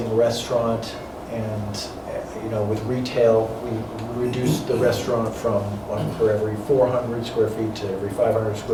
restaurant and, with retail, we reduced the restaurant from 1 per every 400 square feet to every 500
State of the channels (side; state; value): both; identical; correlation 1.00